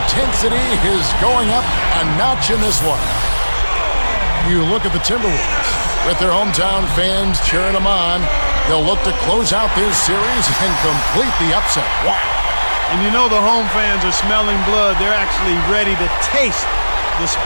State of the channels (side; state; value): both; inverted; correlation -1.00